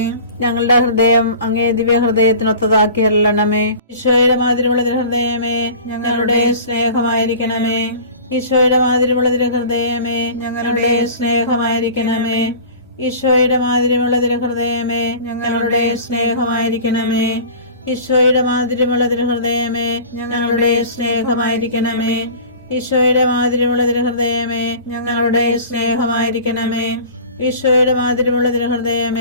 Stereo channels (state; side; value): inverted; both; correlation -0.40